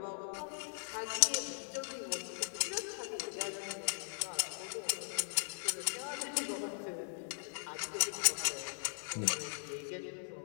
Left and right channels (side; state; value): right; silent; digital silence